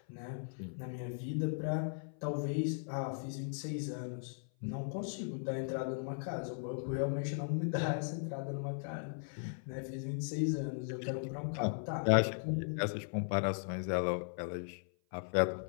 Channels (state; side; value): silent; right; 53 dB below the other